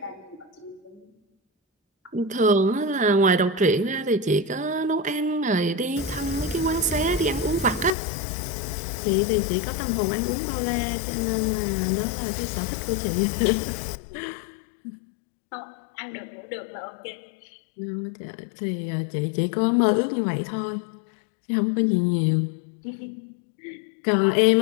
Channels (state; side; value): drops out; right; at 7.9 s